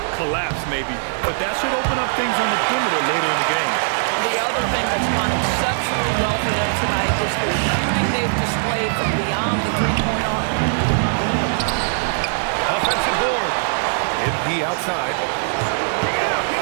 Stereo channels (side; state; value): left; silent; digital silence